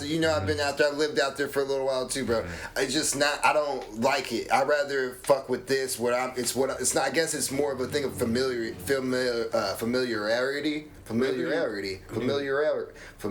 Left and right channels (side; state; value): both; identical; correlation 1.00